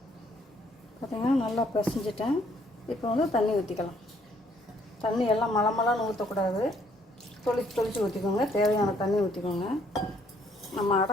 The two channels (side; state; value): both; normal; correlation 0.66